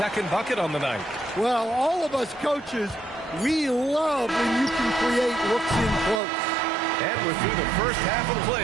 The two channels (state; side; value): drops out; left; at 6.2 s